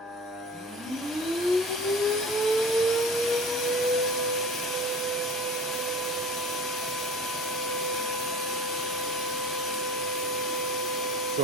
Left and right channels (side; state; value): both; normal; correlation 0.40